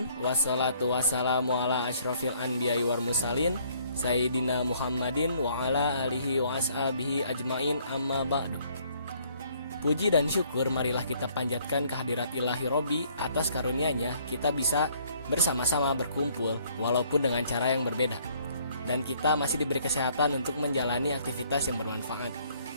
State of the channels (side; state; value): both; inverted; correlation -0.63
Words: Wassalatu wassalamu ala asyrafil anbiya'i wal mursalin Sayyidina Muhammadin wa ala alihi wa ashabihi ajmain, amma ba'du. Puji dan syukur marilah kita panjatkan kehadirat Ilahi Robbi atas karunia-Nya kita bisa bersama-sama berkumpul walaupun dengan cara yang berbeda. Dan kita masih diberi kesehatan untuk menjalani aktivitas yang bermanfaat.